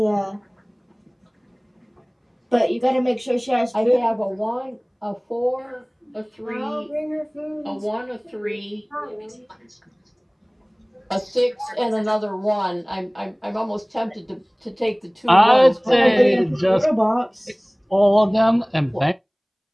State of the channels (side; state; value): both; identical; correlation 1.00